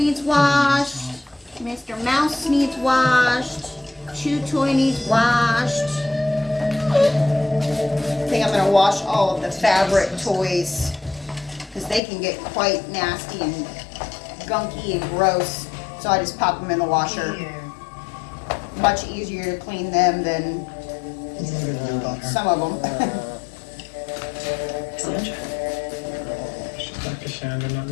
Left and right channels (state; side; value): drops out; right; at 12.0 s